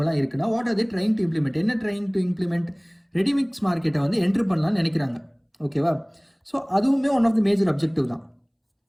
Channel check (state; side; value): identical; both; correlation 1.00